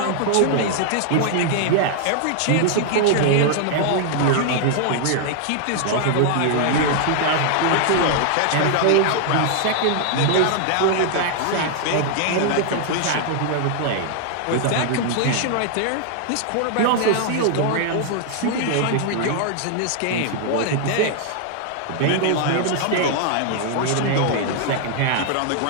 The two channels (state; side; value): different; both; correlation 0.00